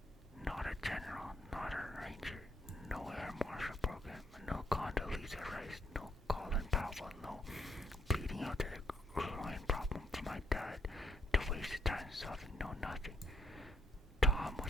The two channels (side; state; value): both; normal; correlation 0.73